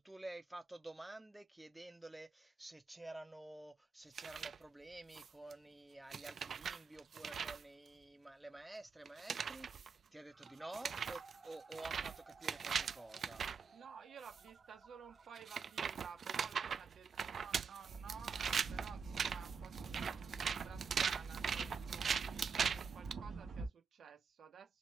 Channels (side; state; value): left; quieter; 5.8 dB